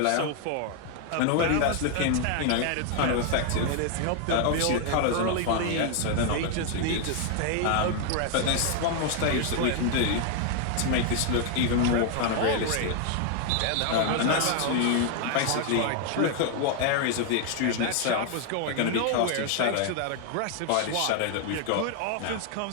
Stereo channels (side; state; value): both; different; correlation 0.00